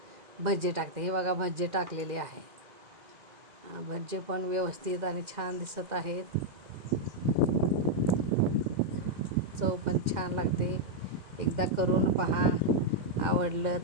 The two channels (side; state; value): left; late; 2.1 ms